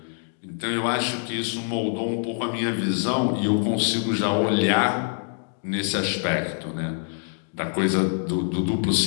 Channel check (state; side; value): silent; right; 60 dB below the other